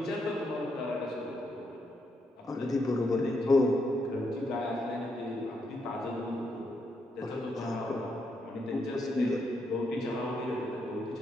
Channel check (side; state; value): both; normal; correlation 0.79